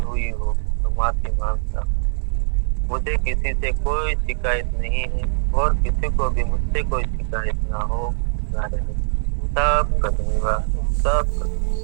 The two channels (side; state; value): left; silent; digital silence